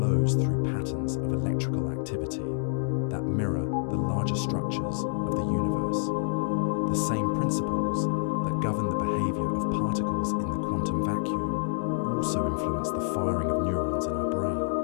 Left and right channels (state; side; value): silent; right; 60 dB below the other